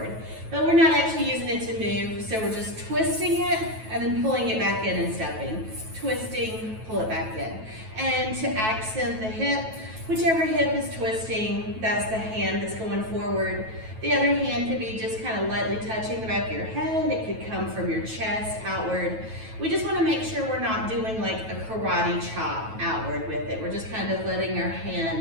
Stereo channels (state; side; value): late; left; 9.2 ms